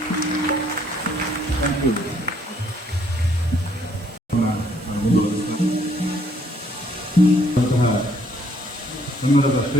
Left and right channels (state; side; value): normal; both; correlation 0.65